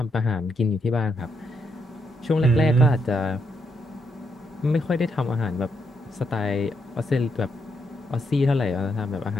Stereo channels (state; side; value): normal; both; correlation 0.79